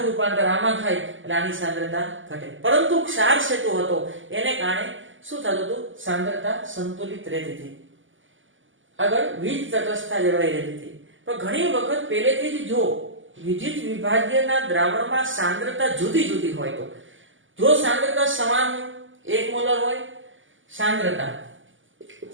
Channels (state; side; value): late; left; 0.57 ms